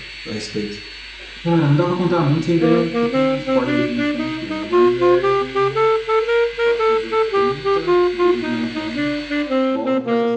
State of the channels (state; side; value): identical; both; correlation 1.00